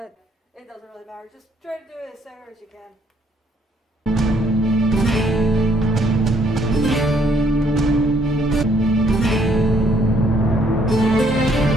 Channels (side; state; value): both; normal; correlation 0.67